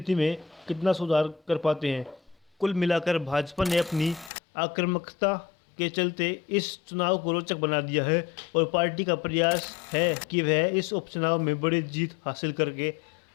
में कितना सुधार कर पाते हैं। कुल मिलाकर भाजपा ने अपनी आक्रामकता के चलते इस चुनाव को रोचक बना दिया है और पार्टी का प्रयास है कि वह इस उपचुनाव में बड़ी जीत हासिल करके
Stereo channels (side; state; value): right; drops out; at 4.3 s